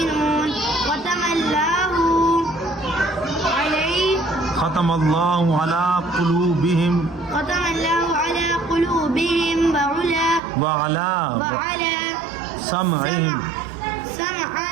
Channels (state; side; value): drops out; left; at 10.4 s